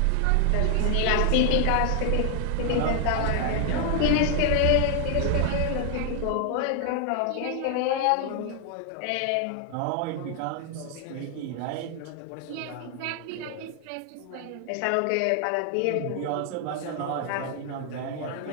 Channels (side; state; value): both; different; correlation 0.00